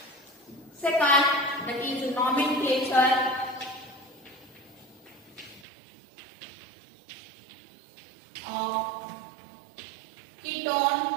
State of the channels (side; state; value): left; drops out; at 5.7 s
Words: second, that is nomenclature of